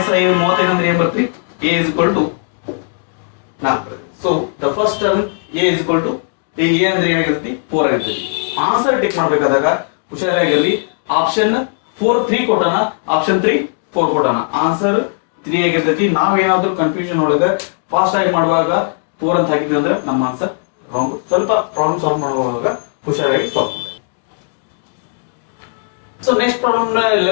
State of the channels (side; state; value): right; silent; digital silence